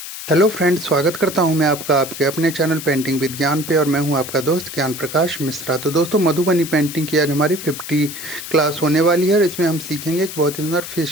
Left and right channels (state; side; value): noise; left; hiss, 10 dB below the sound